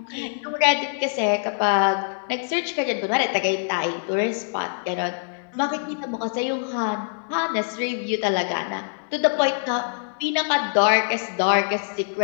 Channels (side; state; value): right; silent; digital silence